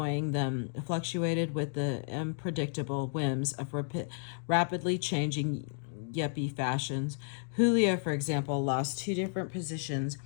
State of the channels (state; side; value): silent; right; digital silence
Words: them fluctuated with the unpredictable whims of rapidly changing yuppie fashions. Julio, for example, lost 2 different positions